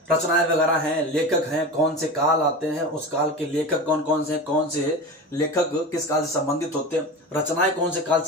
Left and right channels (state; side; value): normal; both; correlation 0.28